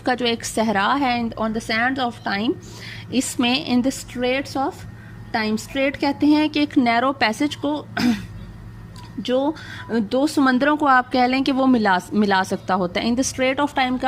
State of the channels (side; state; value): both; identical; correlation 1.00